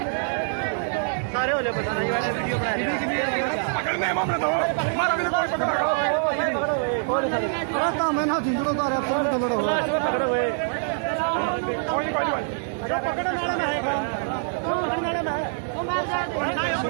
सारे हो जाए पसाना। ये वाले वीडियो बना पकड़ने मामला तो हमारा भी कोई पकड़ा मैं ना जिंदड़ों का पकड़ो हुए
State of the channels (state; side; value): silent; left; digital silence